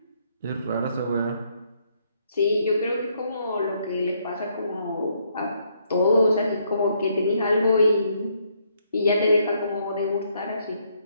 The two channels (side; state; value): both; inverted; correlation -0.71